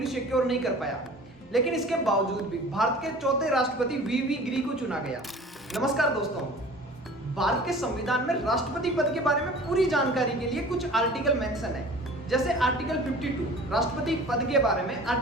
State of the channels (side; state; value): both; normal; correlation 0.43